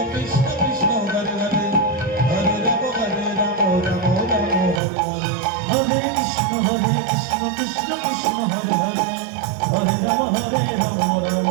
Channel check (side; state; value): left; drops out; at 4.8 s